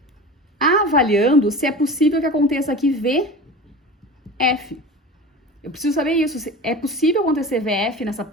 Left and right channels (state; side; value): normal; both; correlation 0.33